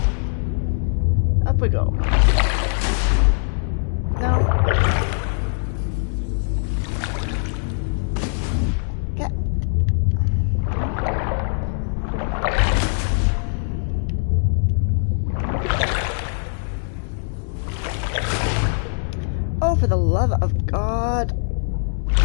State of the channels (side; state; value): right; silent; digital silence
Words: Up we go. No. Get. Oh, for the love of God.